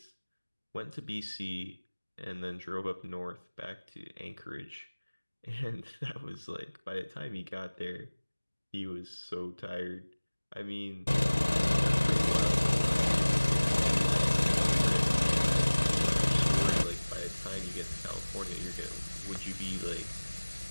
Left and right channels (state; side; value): inverted; both; correlation -1.00